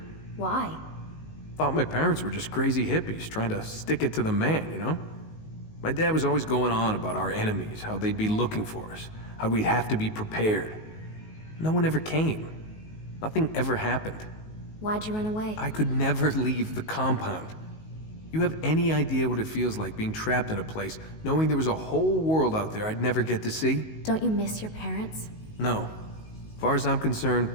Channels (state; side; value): late; right; 19 ms